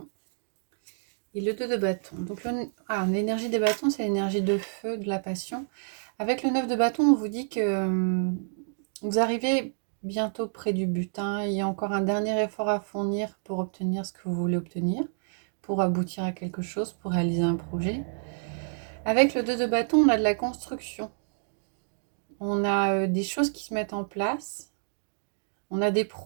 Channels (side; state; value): left; silent; digital silence